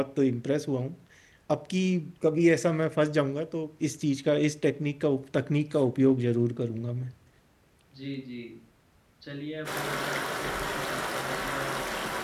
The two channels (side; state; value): both; identical; correlation 1.00